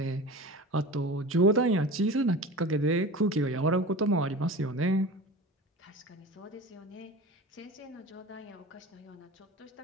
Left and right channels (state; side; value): normal; both; correlation 0.34